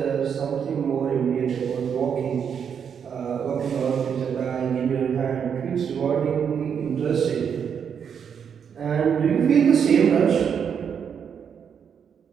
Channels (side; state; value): left; quieter; 7.4 dB